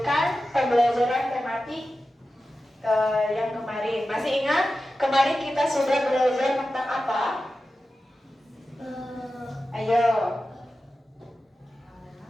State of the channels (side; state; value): both; normal; correlation 0.93